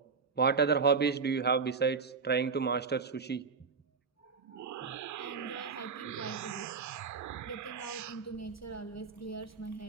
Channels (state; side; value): quieter; left; 5.3 dB